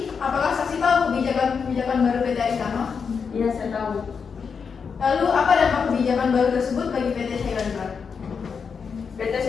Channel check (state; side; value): quieter; right; 6.0 dB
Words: apakah saksi tahu kebijakan baru PT Aditama? Iya, saya tahu. Lalu apa dampak kebijakan baru tersebut bagi PT Shailendra? PT